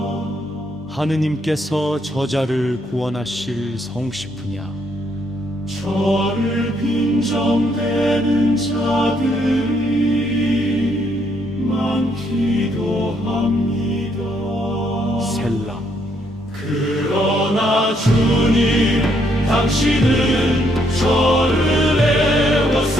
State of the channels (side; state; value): both; normal; correlation 0.72